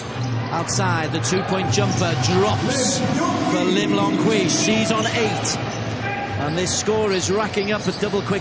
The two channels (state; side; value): identical; both; correlation 1.00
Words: Outside, the 2-point jumper drops for Lim Long Hui. She's on 8. And this score is racking up at double